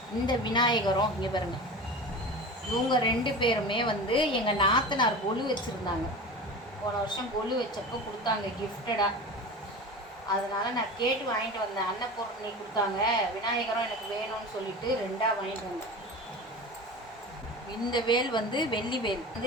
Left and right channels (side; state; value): both; normal; correlation 0.32